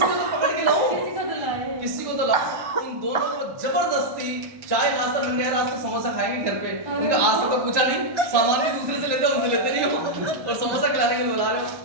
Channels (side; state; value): left; late; 1.1 ms